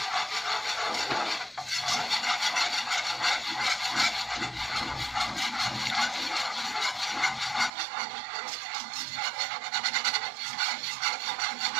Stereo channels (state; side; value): drops out; left; at 7.7 s